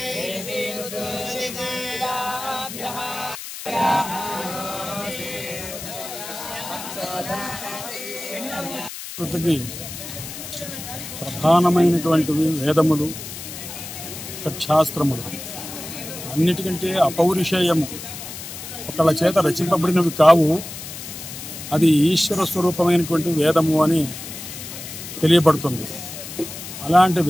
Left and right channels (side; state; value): left; noise; hiss, 10 dB below the sound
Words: జాతికి ప్రధానమైనటువంటివి వేదములు, షట్శాస్త్రములు. అన్నిటికంటే అపౌరుషేయము, ఒకళ్ళ చేత రచింపబడినవి కావు, అది ఈశ్వర స్వరూపమైనటువంటి వేదము అని తెలియబడుతుంది. అలాంటి